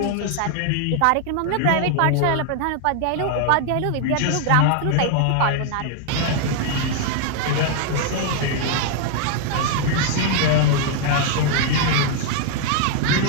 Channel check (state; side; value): different; both; correlation 0.00